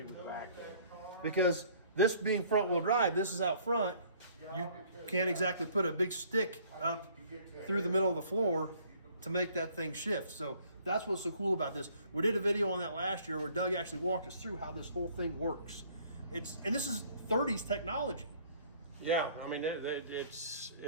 with the back there. Because this being front wheel drive, this is out front. You can't exactly put a big stick up through the middle of the floor to make that thing shift. So that's what's so cool about this. We did a video on that last year where Doug actually walked us through how this whole thing works. And this is 30s technology. Yeah, I mean, it's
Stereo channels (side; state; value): both; inverted; correlation -0.57